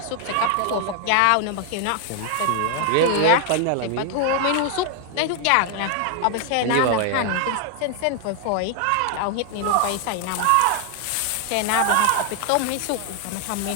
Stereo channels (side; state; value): both; different; correlation 0.00